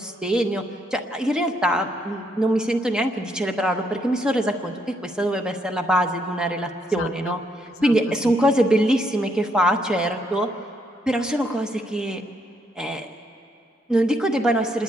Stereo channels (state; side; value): normal; both; correlation 0.74